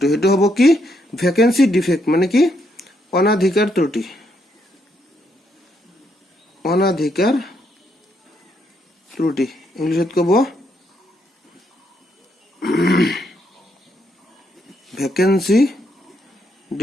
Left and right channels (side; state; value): both; normal; correlation 0.76